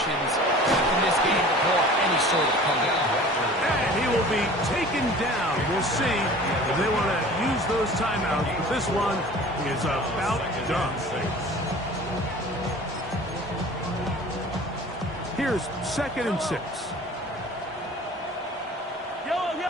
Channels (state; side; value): normal; both; correlation 0.43